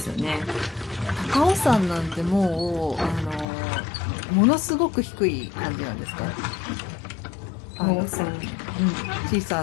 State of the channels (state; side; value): drops out; right; at 3.5 s